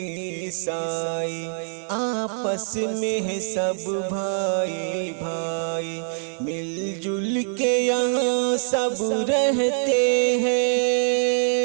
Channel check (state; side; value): silent; left; 57 dB below the other